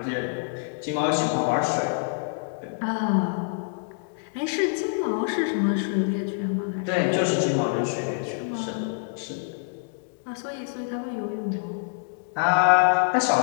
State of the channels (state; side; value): silent; right; digital silence